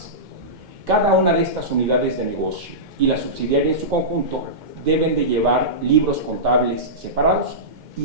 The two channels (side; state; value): left; late; 2.1 ms